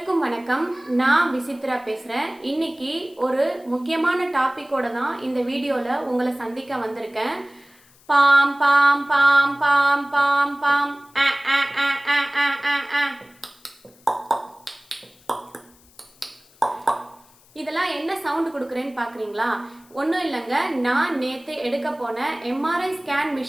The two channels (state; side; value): noise; left; hiss, 29 dB below the sound